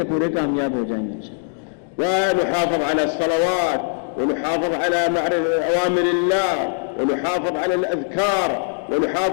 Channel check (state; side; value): silent; right; digital silence